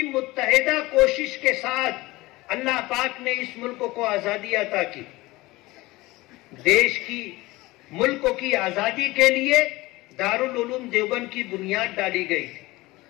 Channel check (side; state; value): right; quieter; 20.3 dB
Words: متحدہ کوشش کے ساتھ اللہ پاک نے اس ملک کو آزادی عطا کی۔ دیش کی ملک کی آزادی کے لیے دارالعلوم دیوبند کی بنیاد ڈالی گئی تھی۔